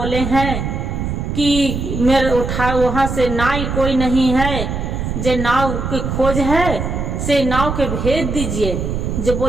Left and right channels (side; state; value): right; noise; rumble, 3 dB below the sound